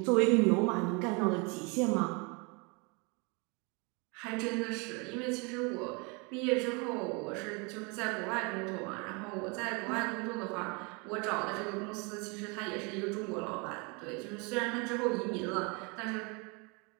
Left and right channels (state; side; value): quieter; left; 31.1 dB